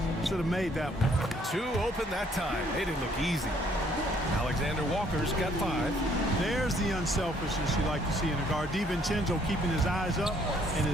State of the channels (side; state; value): both; normal; correlation 0.65